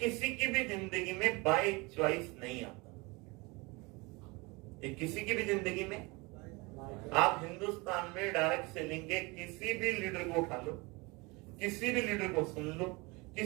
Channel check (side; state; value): left; quieter; 26.1 dB